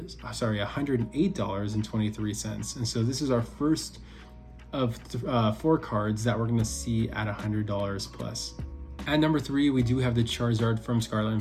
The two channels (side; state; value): both; identical; correlation 1.00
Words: And so this is our first of 4 cards that we're going to see at $100 plus. At number 3, we do have the Charizard from Scarlet and